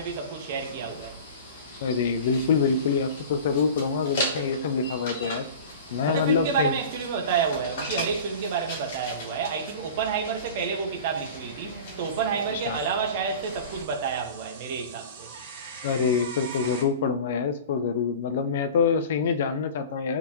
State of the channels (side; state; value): both; inverted; correlation -0.36